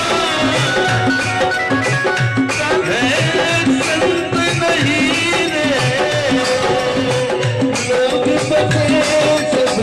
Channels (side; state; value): both; identical; correlation 1.00